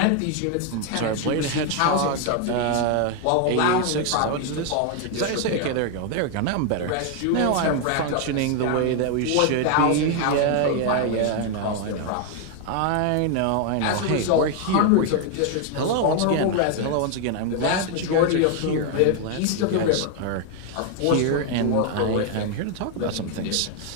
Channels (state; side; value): different; both; correlation 0.01